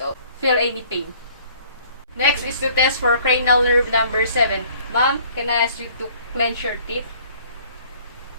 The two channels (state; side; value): inverted; both; correlation -0.56